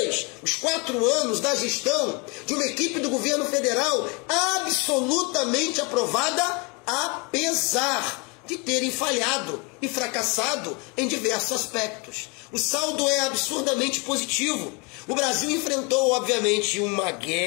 os 4 anos da gestão de uma equipe do governo federal absolutamente aprovada, apesar de terem falhado e fracassado em diversos aspectos. O saldo é absurdamente positivo. O Brasil enfrentou, obviamente, uma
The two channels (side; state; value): right; quieter; 30.8 dB